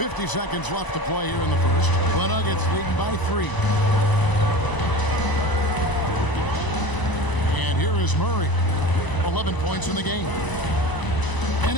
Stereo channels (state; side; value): late; right; 1.0 ms